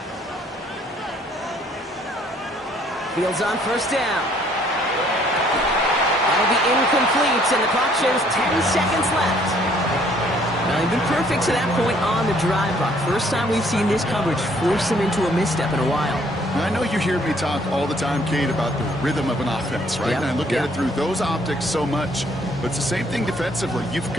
Fields on first down. That'll be incomplete, and the clock shows 10 seconds left. Well, they've been perfect to that point on the drive, Buck. First time we've seen this coverage force them into a misstep in a while. Now, I know you hear me talk all the time, Kate, about the rhythm of an offense, right? Yep. And I look at it through those optics so much. But it's the same thing defensively. You've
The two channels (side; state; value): both; normal; correlation 0.63